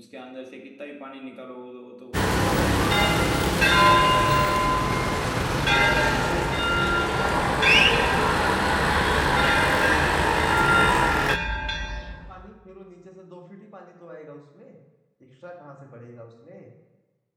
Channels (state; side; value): identical; both; correlation 1.00